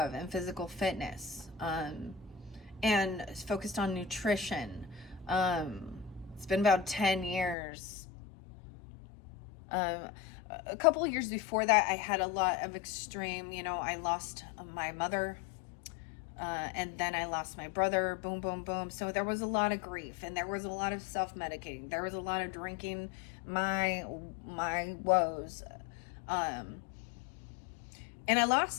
and physical fitness, and focused on nutrition. It's been about 10 years. A couple of years before that, I had a lot of extreme, you know, I lost my mother, and then I lost my brother, boom, boom, boom. So there was a lot of grief, and there was a lot of self-medicating. There was a lot of drinking my woes. And I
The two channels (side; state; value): right; drops out; at 7.6 s